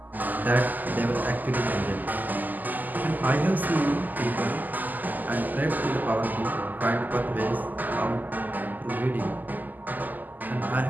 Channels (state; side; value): late; left; 0.084 ms